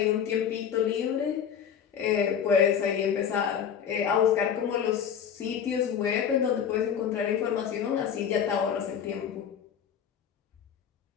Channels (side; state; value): right; quieter; 8.1 dB